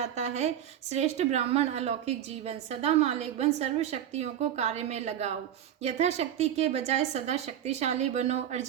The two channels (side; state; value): left; quieter; 10.4 dB